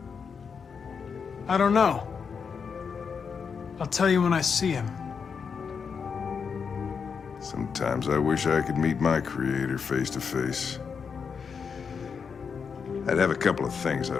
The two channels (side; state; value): right; quieter; 6.1 dB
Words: I don't know. I'll tell you when I see him. Sometimes I wish I could meet my creator face to face. I'd have a couple of things